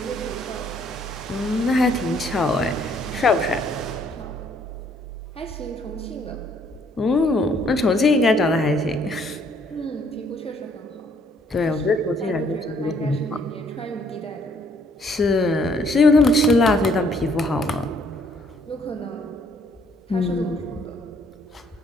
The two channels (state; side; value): normal; both; correlation 0.65